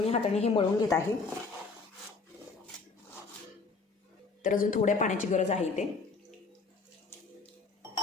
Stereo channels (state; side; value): quieter; right; 4.3 dB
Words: हाताने हे मळून घेत आहे. तर अजून थोड्या पाण्याची गरज आहे इथे.